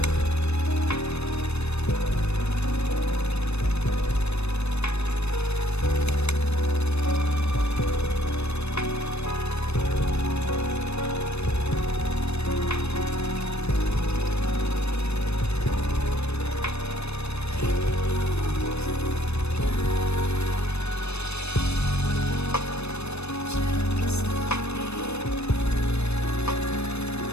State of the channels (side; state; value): right; late; 0.80 ms